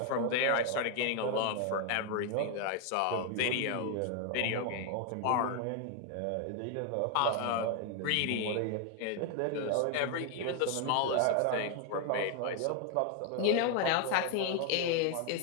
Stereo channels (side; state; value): both; different; correlation 0.01